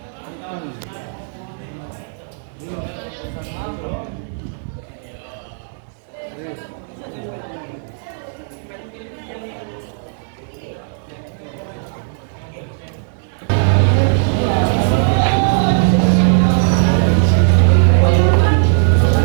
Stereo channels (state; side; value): silent; left; 67 dB below the other